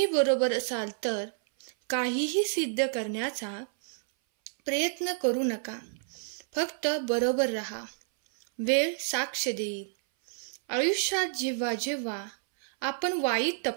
बरोबर असाल तर काहीही सिद्ध करण्याचा प्रयत्न करू नका. फक्त बरोबर राहा. वेळ साक्ष देईल. आयुष्यात जेव्हा जेव्हा आपण वाईट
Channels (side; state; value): left; silent; 58 dB below the other